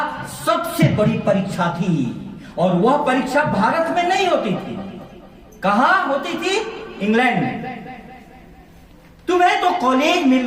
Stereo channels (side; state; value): both; identical; correlation 1.00